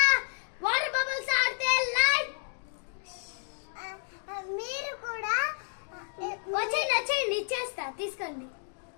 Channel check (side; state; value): right; silent; digital silence